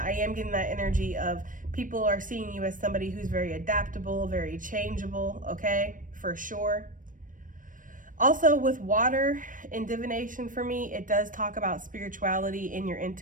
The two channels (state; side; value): late; left; 0.38 ms